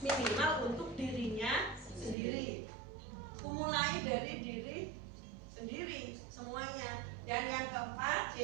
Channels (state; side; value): drops out; left; at 2.1 s